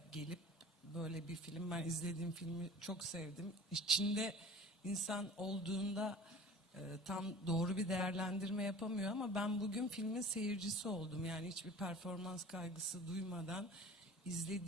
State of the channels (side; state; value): both; normal; correlation 0.42